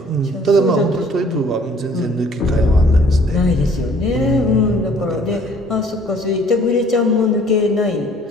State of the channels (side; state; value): both; normal; correlation 0.56